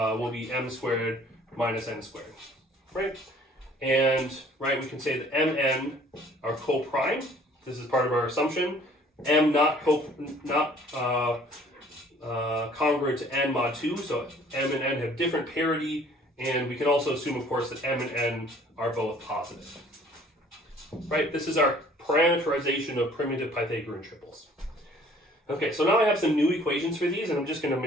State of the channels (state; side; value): normal; both; correlation 0.55